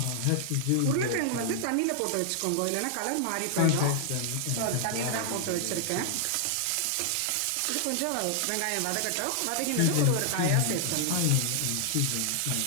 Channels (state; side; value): different; both; correlation 0.00